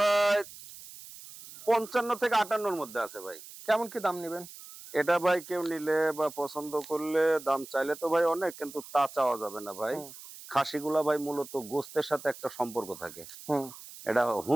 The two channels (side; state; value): right; noise; hiss, 16 dB below the sound